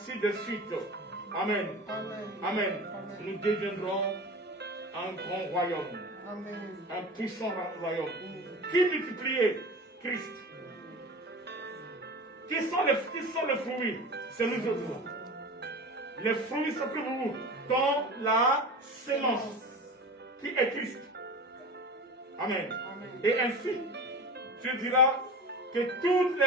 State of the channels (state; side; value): normal; both; correlation 0.32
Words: de suite. Amen. Amen. Amen. Nous deviendrons un grand royaume. Amen. Un puissant royaume. Qui multipliait? Christ. Qui sont les fruits? C'est nous autres. Les fruits sont que vous dans la sémence qui est Christ. Amen. Amen. Et ainsi, tu diras que toutes